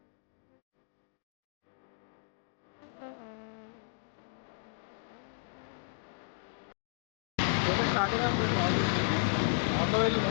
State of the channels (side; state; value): right; silent; digital silence